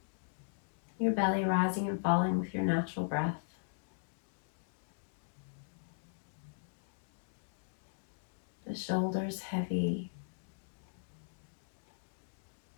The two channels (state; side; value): silent; right; digital silence